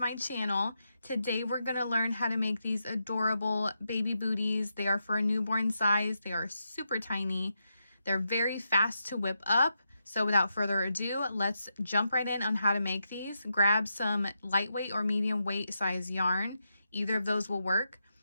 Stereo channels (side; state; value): both; inverted; correlation -0.85